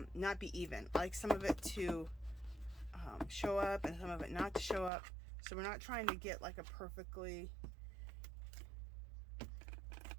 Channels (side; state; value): left; drops out; at 4.9 s